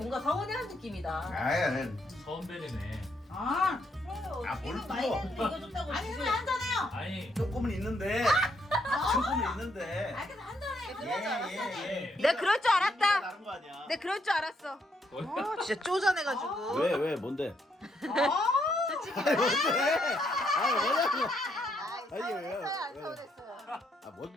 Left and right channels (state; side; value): normal; both; correlation 0.74